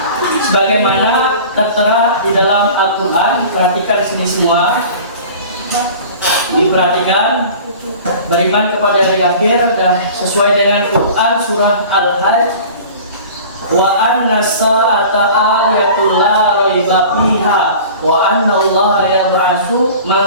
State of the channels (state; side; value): inverted; both; correlation -0.41